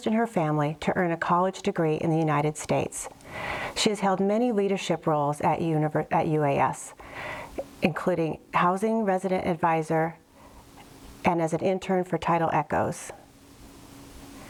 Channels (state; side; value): identical; both; correlation 1.00